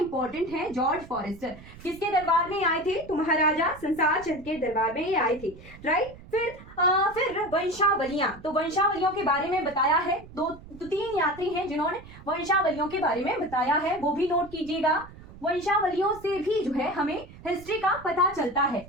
है। जॉर्ज फॉरेस्टर किसके दरबार में आए थे? तो महाराजा संसार चंद के दरबार में ये आए थे, राइट। फिर वंशावलियां, तो वंशावलियों के बारे में बताया है। दो तीन यात्री हैं जिन्होंने वंशावलियों के बारे में बताया है, वो भी नोट कीजिएगा। वंशावलियों से भी जो है हमें हिस्ट्री का पता चलता है,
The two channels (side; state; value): right; noise; rumble, 18 dB below the sound